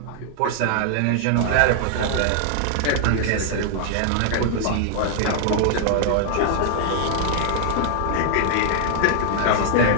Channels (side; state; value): both; different; correlation 0.00